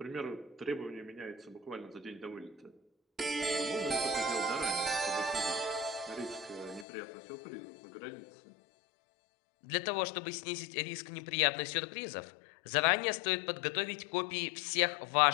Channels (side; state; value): right; drops out; at 6.9 s